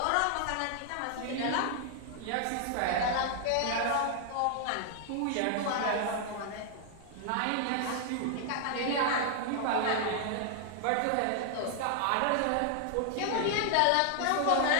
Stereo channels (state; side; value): different; both; correlation 0.00